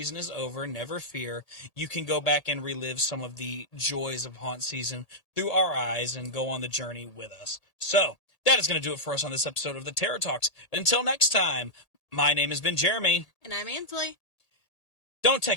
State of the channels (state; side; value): late; right; 1.8 ms